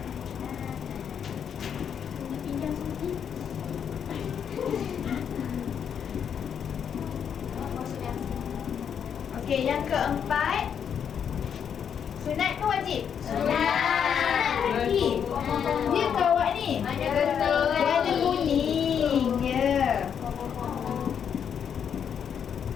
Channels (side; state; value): right; quieter; 7.9 dB